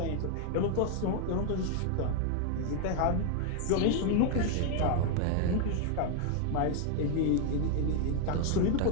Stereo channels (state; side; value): different; both; correlation 0.00